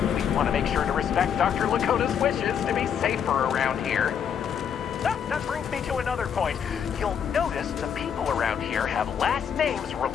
We want to make sure to respect Dr. Lakota's wishes to be safer around here. That brings me to another point. You'll notice the people around here have last names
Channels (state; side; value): quieter; right; 8.0 dB